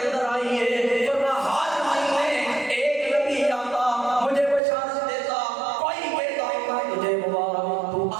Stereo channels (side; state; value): left; drops out; at 4.6 s